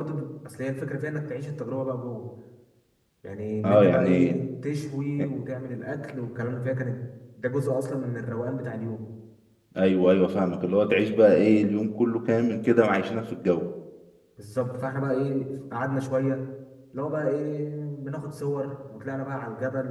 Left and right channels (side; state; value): both; identical; correlation 1.00